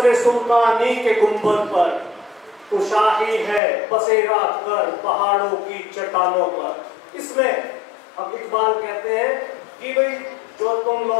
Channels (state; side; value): drops out; right; at 3.6 s